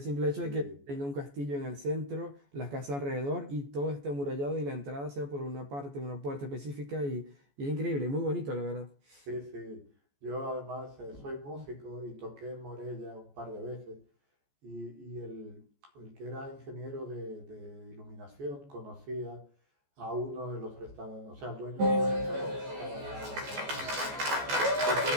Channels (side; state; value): left; late; 14 ms